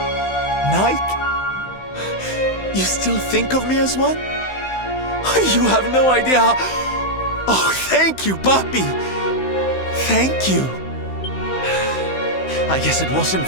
You still think of me as one? You have no idea how... Oh, thank you, puppy! Thank you! I guess it wasn't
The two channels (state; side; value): late; right; 16 ms